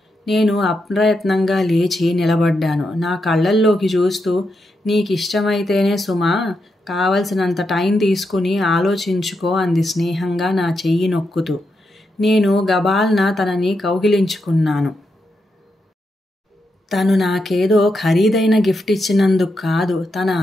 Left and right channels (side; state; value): both; normal; correlation 0.84